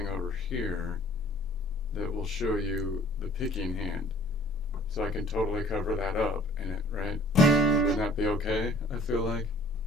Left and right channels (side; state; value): both; normal; correlation 0.53